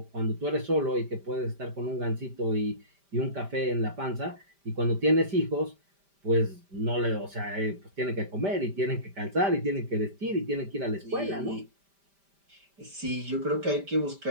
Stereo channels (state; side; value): late; left; 5.1 ms